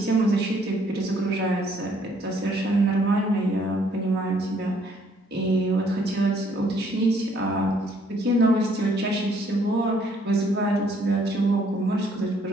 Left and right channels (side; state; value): both; normal; correlation 0.65